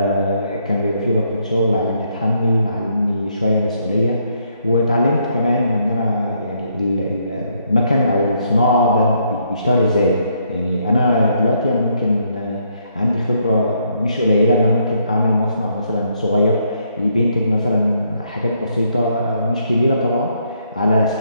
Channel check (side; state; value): both; inverted; correlation -0.72